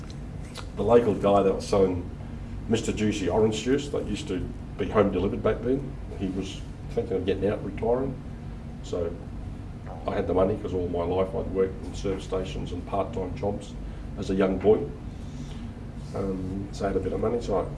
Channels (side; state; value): both; identical; correlation 1.00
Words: The local guy that was selling Mr. Juicy orange juice that used to be home delivered back then, he was thinking of getting out, retiring. So I had the money because all my life I'd worked in service stations and part-time jobs as a young boy. So I had a bit of money, so